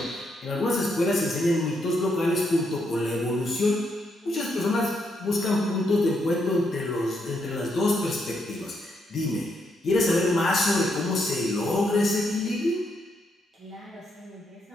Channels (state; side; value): normal; both; correlation 0.78